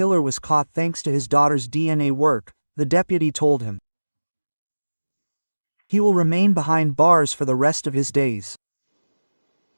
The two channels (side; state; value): both; inverted; correlation -1.00